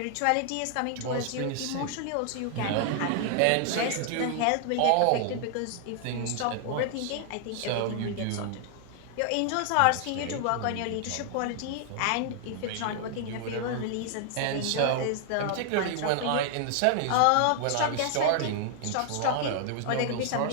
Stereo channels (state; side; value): different; both; correlation 0.00